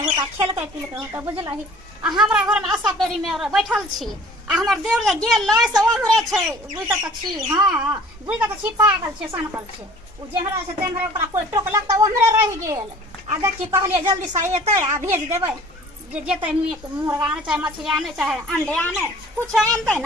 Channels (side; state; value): both; normal; correlation 0.48